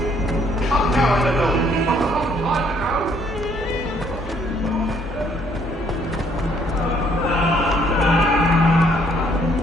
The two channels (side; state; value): both; normal; correlation 0.65